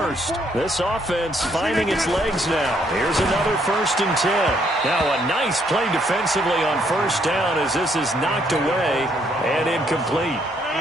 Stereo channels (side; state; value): both; normal; correlation 0.70